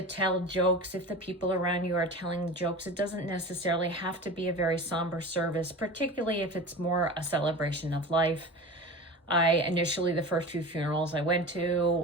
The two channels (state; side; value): normal; both; correlation 0.32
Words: tell jokes if the people around you are telling jokes. It doesn't necessarily have to be a very somber service, particularly if it's more a celebration of life. The first few funerals I went